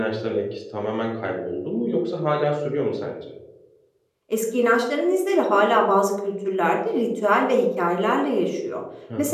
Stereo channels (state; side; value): identical; both; correlation 1.00